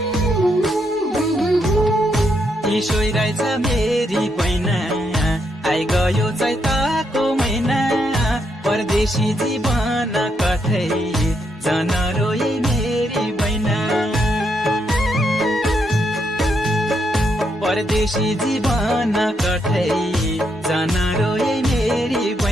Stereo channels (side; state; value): both; normal; correlation 0.78